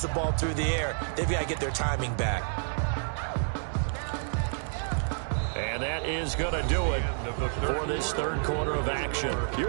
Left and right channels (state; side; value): silent; left; digital silence